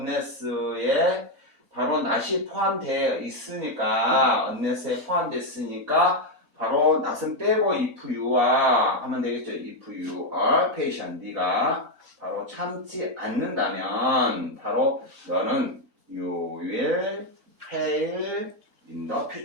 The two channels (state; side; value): normal; both; correlation 0.04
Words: 바로 not이 포함되어 있으니까, unless에 포함됐으니까 바로 not은 빼고 if you와 하면 되겠죠. if you are patient, 네가 바로 참지 않는다면 바로 너는 you will fail in the